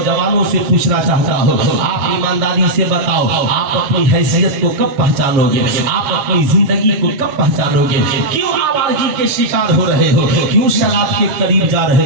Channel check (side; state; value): left; late; 7.3 ms